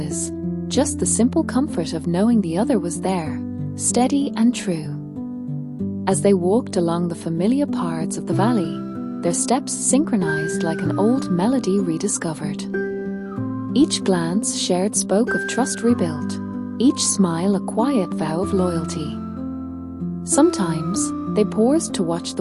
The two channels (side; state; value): both; identical; correlation 1.00